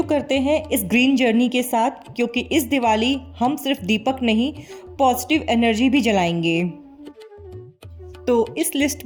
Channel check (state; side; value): identical; both; correlation 1.00